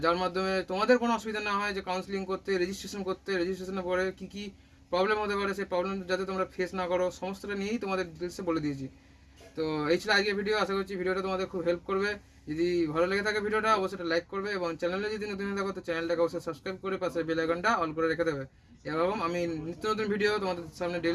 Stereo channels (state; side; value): identical; both; correlation 1.00